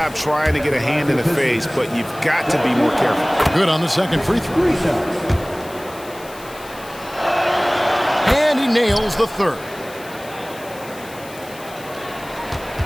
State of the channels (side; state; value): left; noise; hiss, 19 dB below the sound